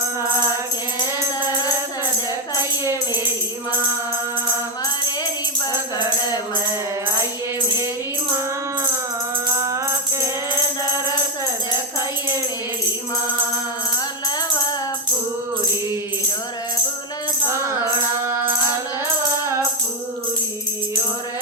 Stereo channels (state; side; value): normal; both; correlation 0.06